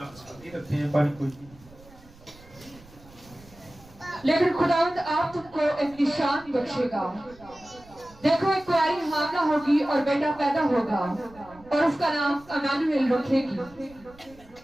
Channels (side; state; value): right; noise; rumble, 24 dB below the sound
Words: लेकिन खुदावंद आप तुमको एक निशान बख्शेगा। देखो एक कुंवारी हामला होगी और बेटा पैदा होगा और उसका नाम इम्मानुएल रखेगी।